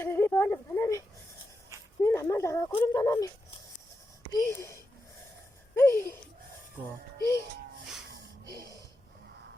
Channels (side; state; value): both; normal; correlation 0.88